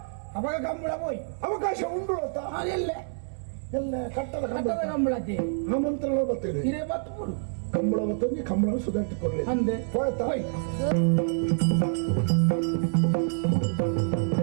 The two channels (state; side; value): silent; left; 60 dB below the other